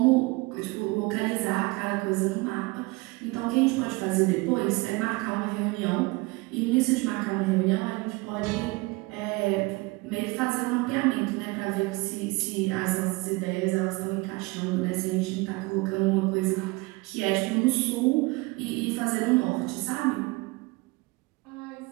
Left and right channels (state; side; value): quieter; left; 24.2 dB